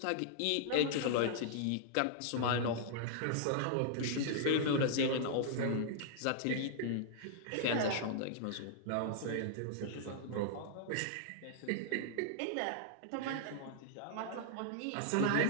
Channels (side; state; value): both; different; correlation -0.01